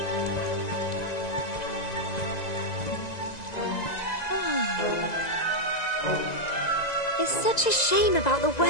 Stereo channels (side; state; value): right; late; 1.9 ms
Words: It's such a shame about the